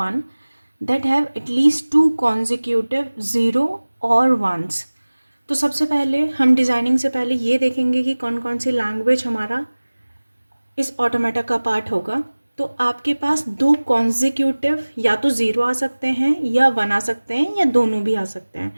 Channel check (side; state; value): both; inverted; correlation -1.00